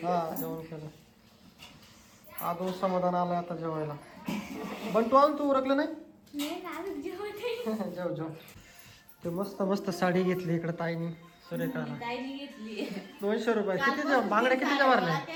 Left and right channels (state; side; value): identical; both; correlation 1.00